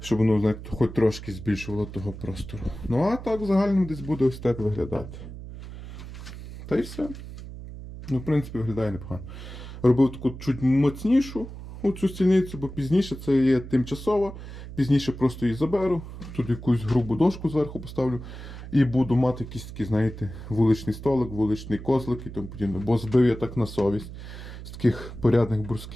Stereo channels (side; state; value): right; noise; hum, 12 dB below the sound